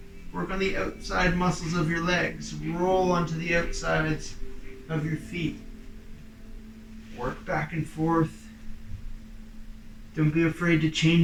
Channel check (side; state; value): both; identical; correlation 1.00